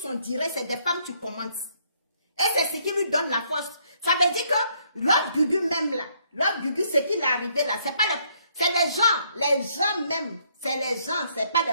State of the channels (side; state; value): both; inverted; correlation -0.69